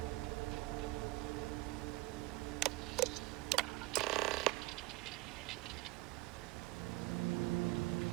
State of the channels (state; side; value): quieter; left; 21.2 dB